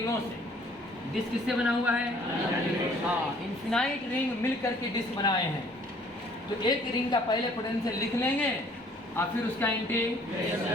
से। डिस्क किससे बना हुआ है? हाँ, इनफिनाइट रिंग मिल करके डिस्क बनाए हैं। तो एक रिंग का पहले पोटेंशियल लिख लेंगे और फिर उसका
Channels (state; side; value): normal; both; correlation 0.58